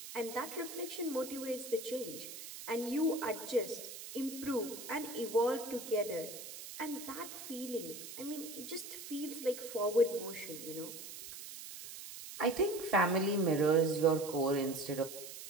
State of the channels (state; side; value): noise; right; hiss, 11 dB below the sound